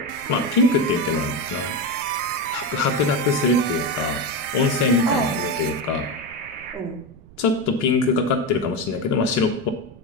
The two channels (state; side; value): noise; right; rumble, 22 dB below the sound